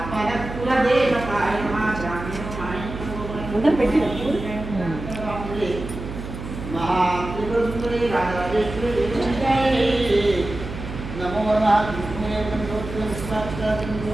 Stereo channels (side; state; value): right; noise; hum, 9 dB below the sound